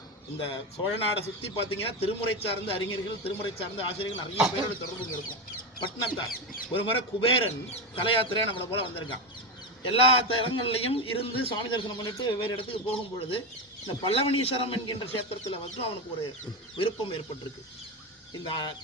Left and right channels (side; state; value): both; normal; correlation 0.15